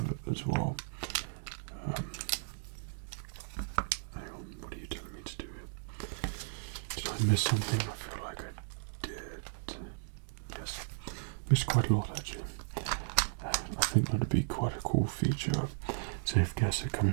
as well. Hang on, what are you telling me to do here? Did I miss something? I feel like I did. Yes, missed quite a lot actually. I think that'd be quite a cool feature. So if guests are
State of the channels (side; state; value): left; silent; digital silence